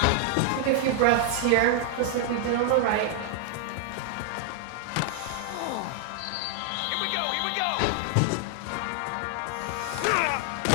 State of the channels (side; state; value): both; different; correlation 0.00